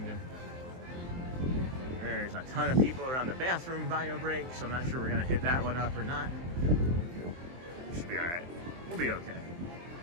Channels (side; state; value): left; late; 23 ms